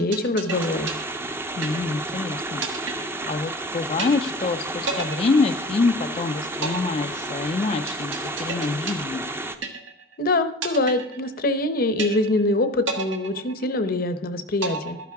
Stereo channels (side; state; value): both; normal; correlation 0.37